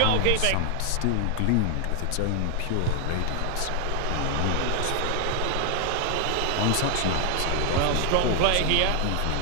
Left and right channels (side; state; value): both; different; correlation 0.00